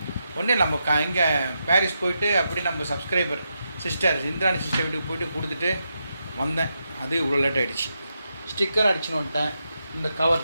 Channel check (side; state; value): both; inverted; correlation -0.84